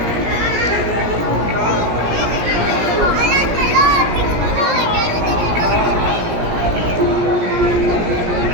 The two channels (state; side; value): late; left; 17 ms